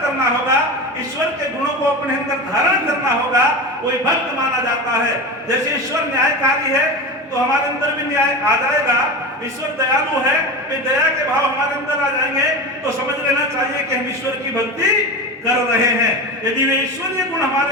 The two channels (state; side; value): normal; both; correlation 0.25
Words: करना होगा, ईश्वर के गुणों को अपने अंदर धारण करना होगा, कोई भक्त माना जाता है। जैसे ईश्वर न्यायकारी है तो हमारे अंदर भी न्याय आ जाएगा। ईश्वर दयालु है, वे दया के भाव हमारे अंदर आ जाएंगे तो समझ लेना चाहिए कि हम ईश्वर की भक्ति कर रहे हैं। यदि वे ईश्वरीय गुण हमारे